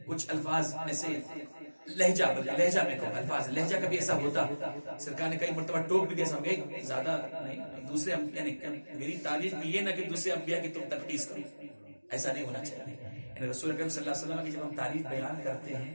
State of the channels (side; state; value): both; inverted; correlation -1.00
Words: کچھ الفاظ ایسے لہجہ میں کہو الفاظ لہجہ کبھی ایسا ہوتا. سرکار نے کئی مرتبہ ٹوک بھی دیا، سمجھے زیادہ نہیں دوسرے یعنی میری تعریف میں یہ نہ کہ دوسرے انبیاء کی تم تنقید کرو، ایسا نہیں ہونا چاہیے. یعنی رسول اکرم صلی اللہ علیہ وسلم کی جب ہم تعریف بیان کرتے ہیں